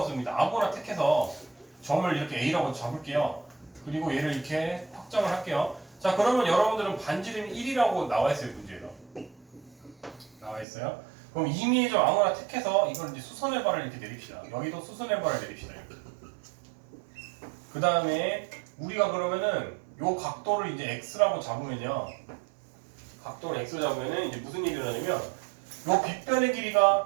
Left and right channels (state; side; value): drops out; left; at 10.7 s